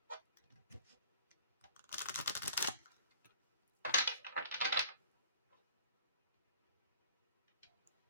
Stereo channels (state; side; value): inverted; both; correlation -0.47